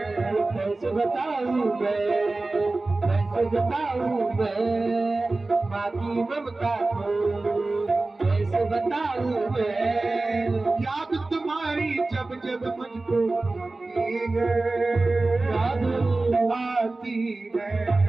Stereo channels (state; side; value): quieter; left; 3.2 dB